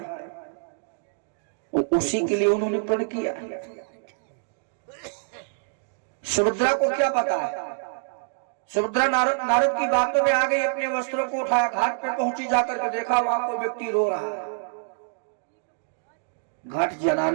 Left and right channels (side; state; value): left; silent; digital silence